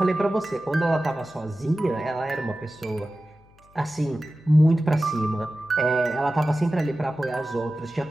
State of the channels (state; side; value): noise; left; hum, 29 dB below the sound